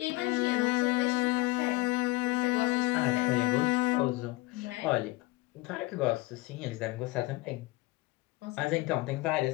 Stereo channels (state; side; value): quieter; right; 21.0 dB